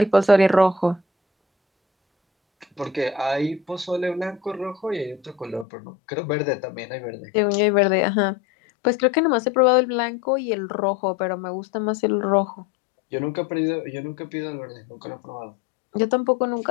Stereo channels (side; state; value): right; drops out; at 5.7 s